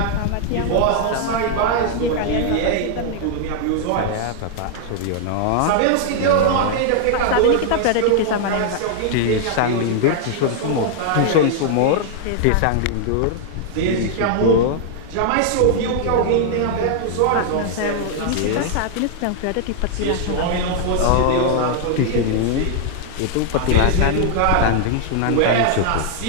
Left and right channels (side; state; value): both; different; correlation 0.00